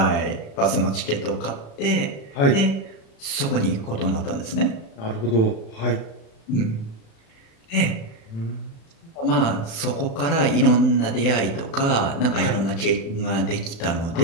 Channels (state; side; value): late; right; 35 ms